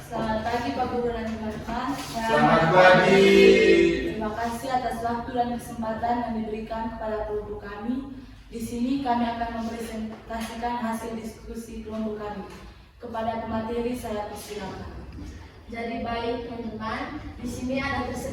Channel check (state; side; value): identical; both; correlation 1.00